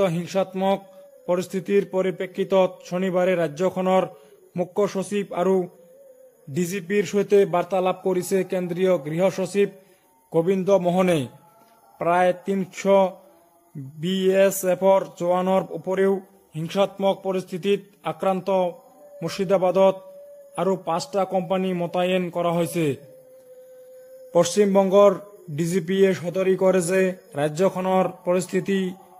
হিংসাত্মক পৰিস্থিতিৰ পৰিপ্ৰেক্ষিতত শনিবাৰে ৰাজ্যখনৰ মুখ্য সচিব আৰু ডিজিপিৰ সৈতে বাৰ্তালাপ কৰিছে কেন্দ্ৰীয় গৃহ সচিব গোবিন্দ মোহনে। প্ৰায় 300 BSFৰ জোৱানৰ উপৰিও হিংসাত্মক পৰিস্থিতিত আক্ৰান্ত মুৰ্ছিদাবাদত আৰু 5টা কোম্পানী মোতায়েন কৰা হৈছে। পশ্চিমবংগৰ ডিজিপিয়ে সদৰি কৰে যে ৰাজ্যখনৰ পৰিস্থিতি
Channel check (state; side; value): identical; both; correlation 1.00